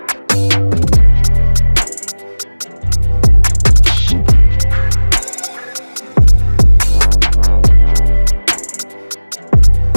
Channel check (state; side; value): inverted; both; correlation -1.00